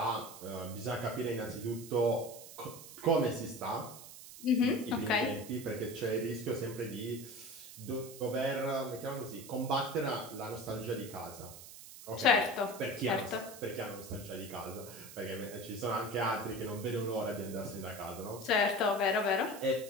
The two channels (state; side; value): noise; right; hiss, 15 dB below the sound